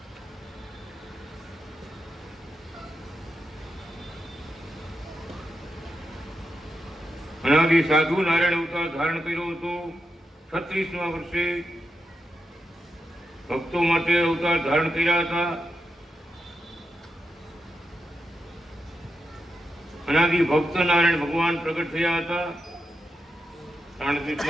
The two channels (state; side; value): normal; both; correlation 0.86